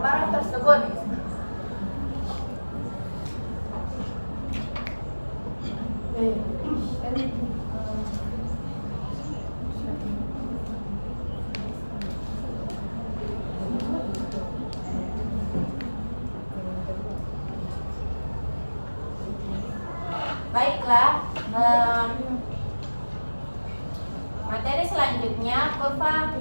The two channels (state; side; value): inverted; both; correlation -1.00